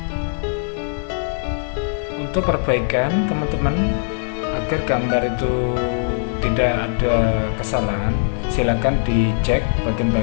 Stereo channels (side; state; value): right; silent; digital silence